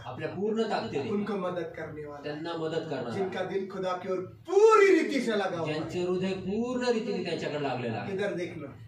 आपल्या पूर्ण ताकदीने उनको मदद करने वाला है, त्यांना मदत करणार. जिनका दिल खुदा की ओर पूरी रीति से लगा हुआ है। ज्यांचे हृदय पूर्ण रीतीने त्याच्याकडे लागलेलं आहे, इधर देखना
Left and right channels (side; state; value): both; identical; correlation 1.00